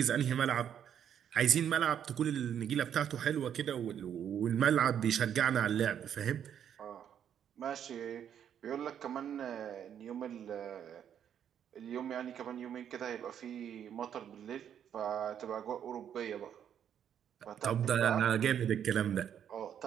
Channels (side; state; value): left; quieter; 9.1 dB